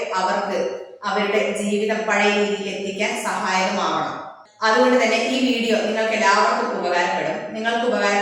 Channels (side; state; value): both; identical; correlation 1.00